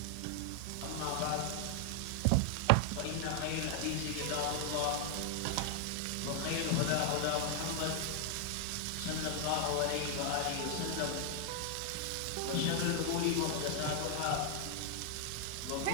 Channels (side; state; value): both; different; correlation 0.00